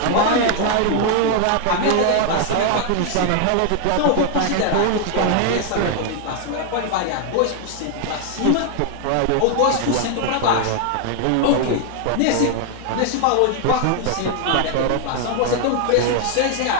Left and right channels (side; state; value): both; different; correlation 0.00